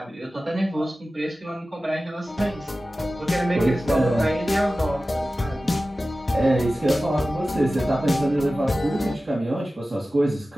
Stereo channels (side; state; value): both; normal; correlation 0.95